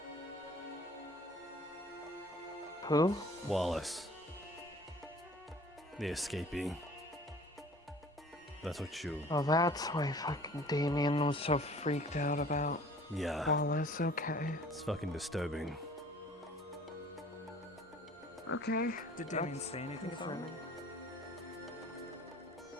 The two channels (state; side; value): normal; both; correlation 0.49